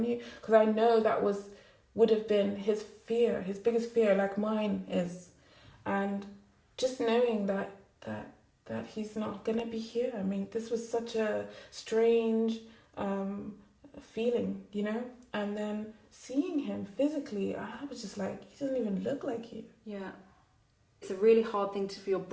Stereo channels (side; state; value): both; identical; correlation 1.00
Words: because I know that would have been his fear, his biggest fear, like mine is. And just knowing that he's not gonna be here. I mean, this was such a strange feeling, you know. And then seeing him physically, I was just like, he doesn't even look like you. Yeah, it's a really hard thing for your